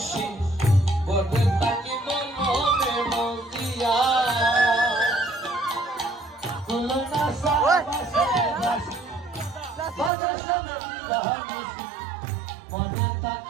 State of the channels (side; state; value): left; drops out; at 10.1 s